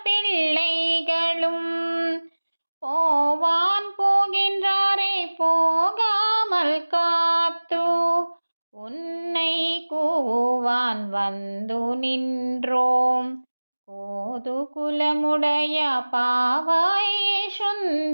பிள்ளைகளும் போவான் போகின்றாரை போகாமல் காத்து உன்னை கூவான் வந்து நின்றோம். கோது குலமுடைய பாவாய்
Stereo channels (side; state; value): both; inverted; correlation -1.00